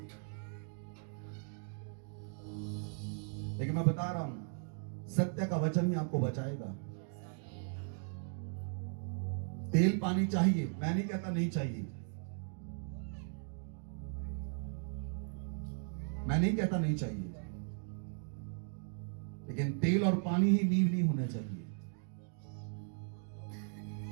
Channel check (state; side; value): silent; left; 53 dB below the other